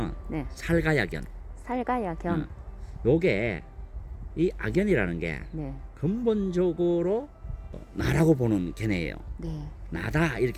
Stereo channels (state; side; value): identical; both; correlation 1.00